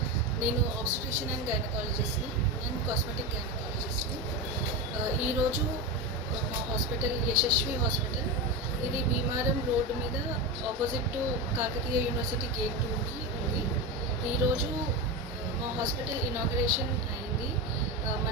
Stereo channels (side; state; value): both; normal; correlation 0.17